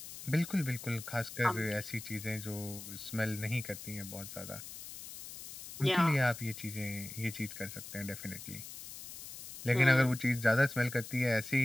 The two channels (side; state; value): left; noise; hiss, 12 dB below the sound